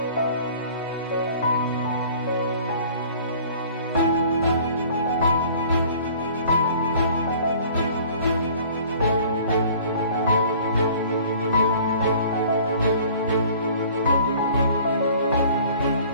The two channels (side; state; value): both; inverted; correlation -0.50